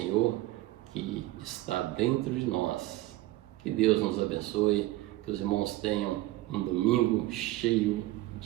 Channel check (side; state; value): left; quieter; 17.1 dB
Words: que está dentro de nós. Que Deus nos abençoe, que os irmãos tenham um domingo cheio